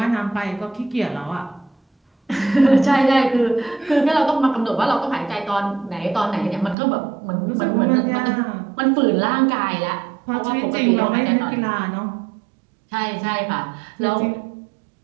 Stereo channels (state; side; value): drops out; left; at 6.8 s